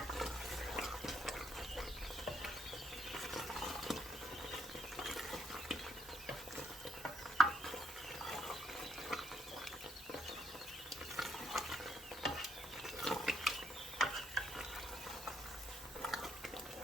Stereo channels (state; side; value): noise; right; hiss, 15 dB below the sound